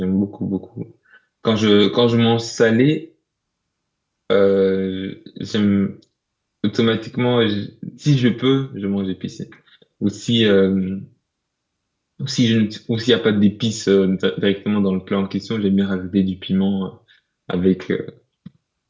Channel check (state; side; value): identical; both; correlation 1.00